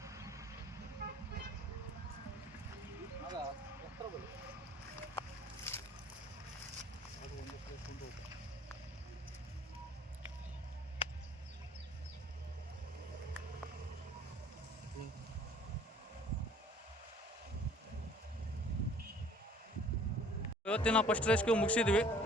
ಇವತ್ತಿನ ಫಸ್ಟ್ ರೆಸ್ಕ್ಯೂ ಮುಗಿಸಿದ್ವಿ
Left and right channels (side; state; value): both; normal; correlation 0.53